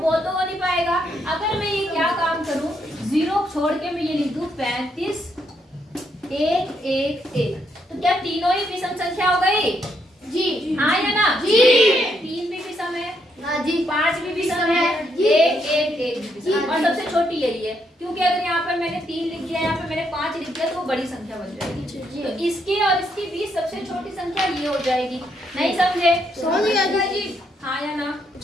तो हो नहीं पाएगा। अगर मैं ये क्या काम करूं, 0 छोड़ के मैं ये लिख दूं 35, 1, 1, 1, तो क्या तीनों ही विषम संख्या हो गई जी? हाँ या ना जी? 3 भी विषम है जी, 5 भी विषम है, 1, 1, 1 भी विषम। और सबसे छोटी यही है, क्योंकि अगर यहाँ पर मैंने 3 लिख दिया, यहाँ पर मैंने 5 लिख दिया, तो वो बड़ी संख्या बन जाएगी। तो इसके और इसके बीच सबसे छोटी संख्या ये हो जाएगी। नहीं समझे? समझ गया जी? हाँ या ना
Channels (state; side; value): normal; both; correlation 0.76